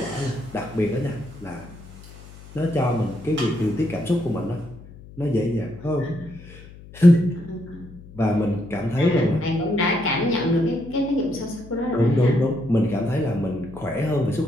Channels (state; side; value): noise; left; hum, 19 dB below the sound